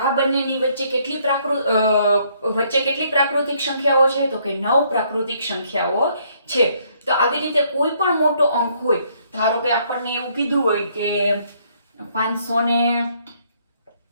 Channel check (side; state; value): both; inverted; correlation -0.68